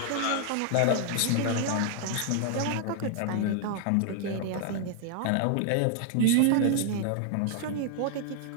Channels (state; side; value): different; both; correlation 0.00